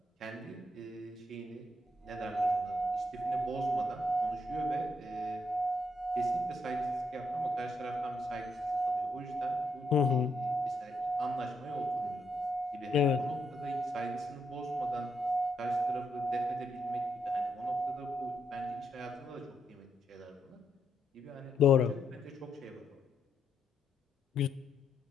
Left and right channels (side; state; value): both; normal; correlation 0.78